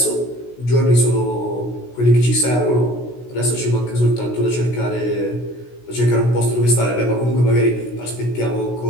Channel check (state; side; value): late; right; 16 ms